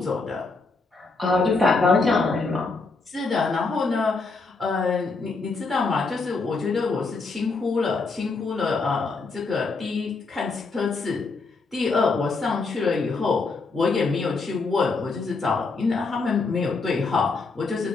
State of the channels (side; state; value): right; quieter; 4.0 dB